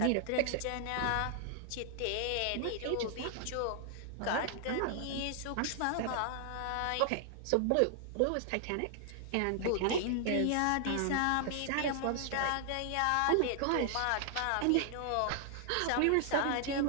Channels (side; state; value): both; different; correlation 0.00